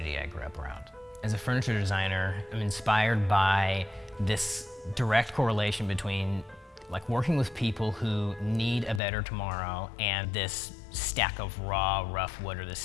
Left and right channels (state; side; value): drops out; right; at 9.0 s